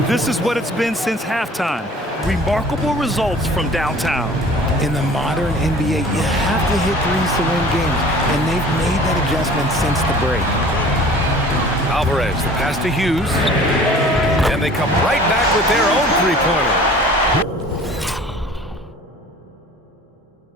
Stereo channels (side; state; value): both; normal; correlation 0.47